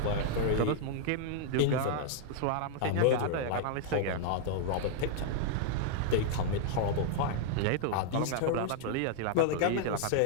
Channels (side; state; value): both; different; correlation 0.00